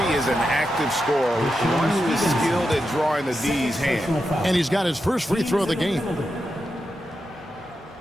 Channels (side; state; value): both; normal; correlation 0.88